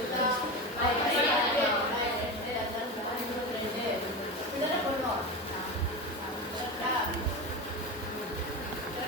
இதெல்லாம் பண்ணுவோம். கரெக்டா?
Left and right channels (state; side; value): normal; both; correlation 0.22